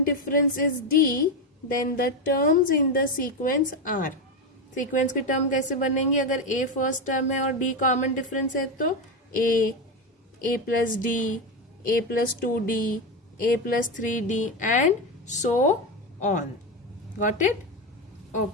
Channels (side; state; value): both; normal; correlation 0.13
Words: difference is D, then the terms in the sequence are. Sequence के टर्म कैसे बनेंगे? अगर A फर्स्ट टर्म है और D कॉमन डिफरेंस है तो A plus D, A plus 2D, A plus 3D and so on. Got it?